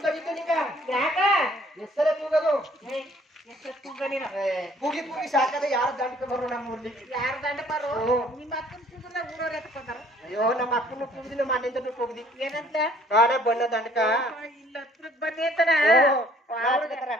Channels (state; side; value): normal; both; correlation 0.58